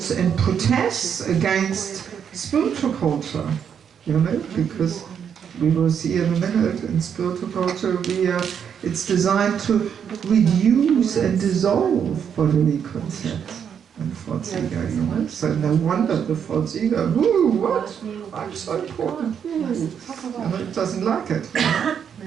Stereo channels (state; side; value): quieter; left; 7.9 dB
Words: and protests against spiritual culture. You know, because we will see in a minute, in spiritual culture it's designed to reduce and dissolve bodily concepts and false ego, you know. So no wonder the false ego, ooh, what? I'm so important. Ooh. You know, it doesn't like it. You know?